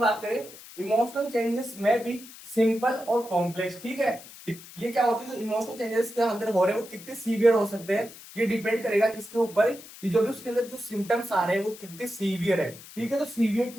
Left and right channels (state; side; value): noise; left; hiss, 17 dB below the sound